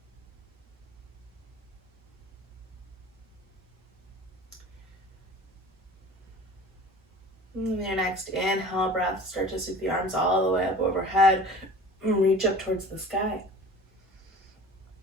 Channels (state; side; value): normal; both; correlation 0.42